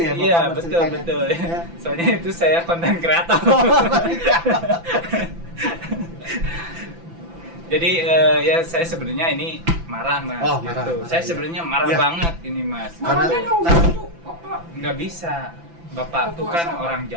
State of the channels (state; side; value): late; left; 5.9 ms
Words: ya Bapak? Iya berceritanya? betul. Ya. Soalnya itu saya konten kreator. Jadi ya saya sebenarnya ini marah mas. Oh, marah, gitu. marah, Saya iya. sebenarnya marah Iya. banget ini mas. Karena- Makanya yang gitu, Bapak. Nggak bisa. Bapak tuh Puasa. kan orang